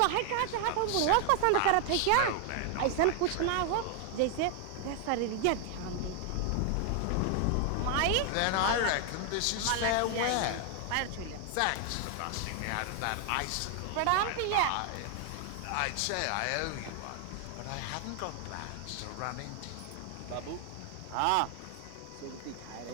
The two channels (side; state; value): both; different; correlation 0.00